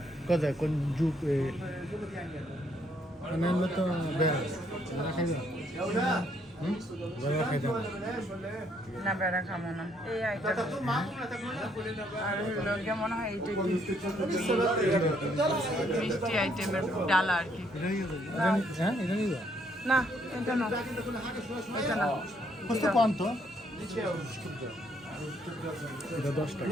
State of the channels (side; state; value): both; normal; correlation 0.70